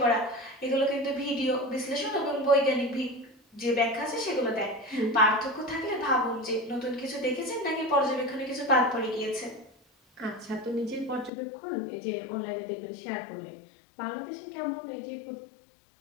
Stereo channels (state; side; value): drops out; right; at 11.3 s